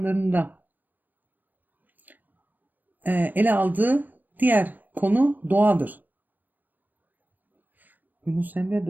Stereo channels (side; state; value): left; late; 0.089 ms